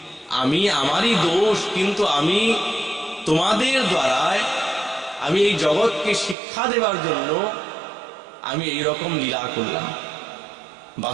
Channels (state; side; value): drops out; left; at 6.4 s